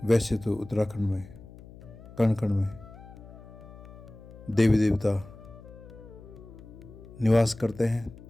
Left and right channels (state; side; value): noise; left; hum, 18 dB below the sound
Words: वैसे तो उत्तराखंड में कण कण में देवी देवता निवास करते हैं,